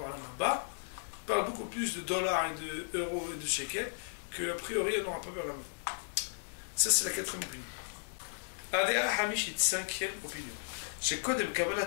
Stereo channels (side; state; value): right; silent; digital silence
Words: Haba, ils parlent beaucoup plus de dollars et d'euros et de shekels, qu'a priori on n'aura pas vers la mort. Ça c'est la quatrième opinion. Adéa Hamishit, cinquième opinion. Chez Kodem Kabbalat